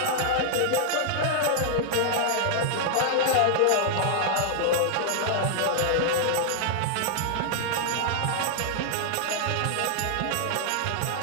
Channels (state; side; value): different; both; correlation -0.01